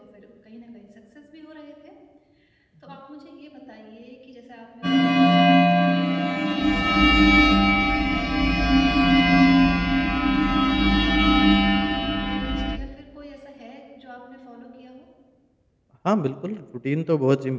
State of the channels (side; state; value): both; identical; correlation 1.00